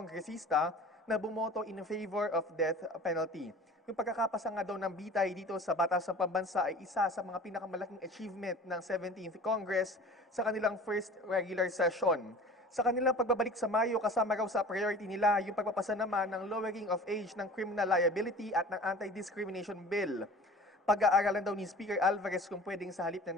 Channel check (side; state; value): both; normal; correlation 0.42